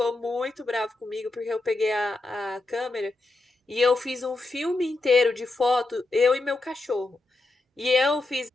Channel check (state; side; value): quieter; right; 3.1 dB